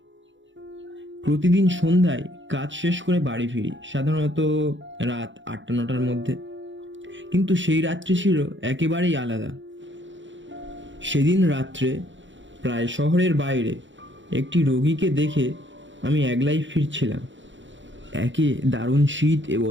প্রতিদিন সন্ধ্যায় কাজ শেষ করে বাড়ি ফিরি, সাধারণত রাত 8টা-9টার মধ্যে। কিন্তু সেই রাত্রি ছিল একেবারেই আলাদা। সেদিন রাত্রে প্রায় শহরের বাইরে একটি রোগীকে দেখে আমি একলাই ফিরছিলাম। একে দারুণ শীত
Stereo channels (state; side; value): late; left; 0.54 ms